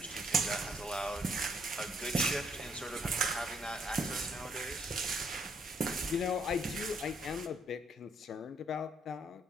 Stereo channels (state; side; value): normal; both; correlation 0.70